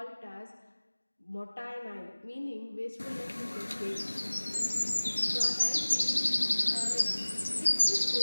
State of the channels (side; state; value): both; inverted; correlation -1.00